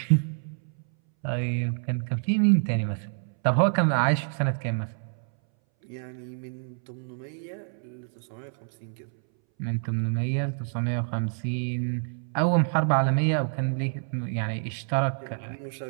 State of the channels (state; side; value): silent; left; 60 dB below the other